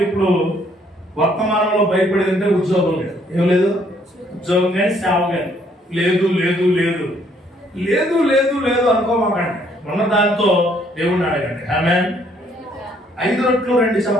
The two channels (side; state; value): both; normal; correlation 0.66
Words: ఇప్పుడు వర్తమానంలో భయపడేదంటే ఉద్యోగం లేదు. ఏం లేదు? ఉద్యోగం కానీ సేవ కానీ లేదు లేదు లేదు లేదు లేదు లేదు అనుకోమాకండి. ఉన్న దాంతో దేవుడిని అడగండి. ఆమేన్. 5 రొట్టెలు 2